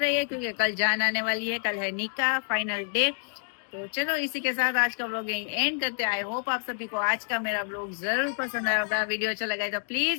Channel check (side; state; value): right; silent; digital silence